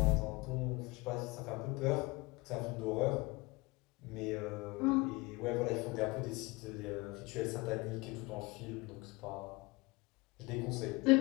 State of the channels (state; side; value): quieter; right; 24.0 dB